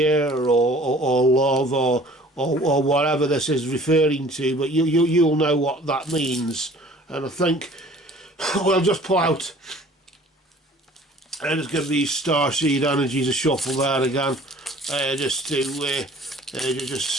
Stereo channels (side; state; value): both; normal; correlation 0.50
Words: or love or whatever this is referring to, but you'll know what that means. And I think we'll just pull out and just give these Starseed energies a shuffle there again, just to just